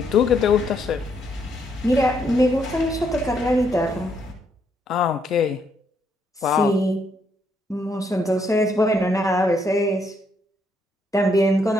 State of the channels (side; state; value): both; normal; correlation 0.74